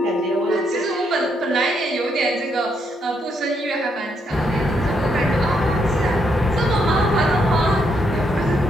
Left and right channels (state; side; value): normal; both; correlation 0.76